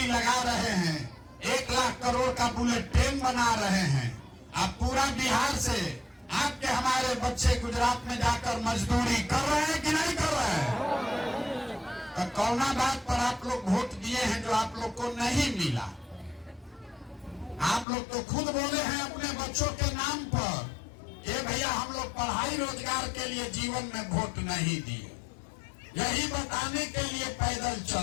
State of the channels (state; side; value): drops out; right; at 17.9 s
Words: लगा रहे हैं, 1 लाख करोड़ का बुलेट ट्रेन बना रहे हैं। अब पूरा बिहार से आपके, हमारे बच्चे गुजरात में जाकर मजदूरी कर रहे हैं कि नहीं कर रहे हैं? तो कौना बात पर आप लोग वोट दिए हैं जो आप लोग को नहीं मिला? आप लोग तो खुद बोले हैं अपने बच्चों के नाम पर कि भैया हम लोग पढ़ाई रोजगार के लिए जीवन में वोट नहीं दिए। यही बताने के लिए पैदल